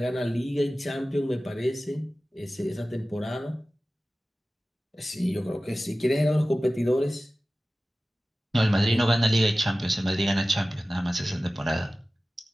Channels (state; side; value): normal; both; correlation 0.96